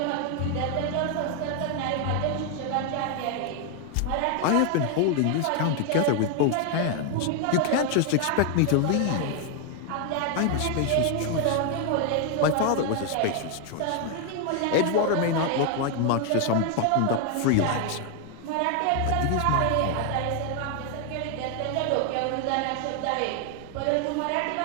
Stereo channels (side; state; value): both; different; correlation 0.00